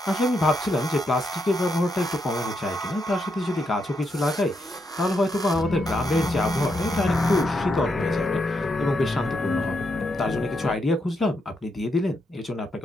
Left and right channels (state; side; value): normal; both; correlation 0.81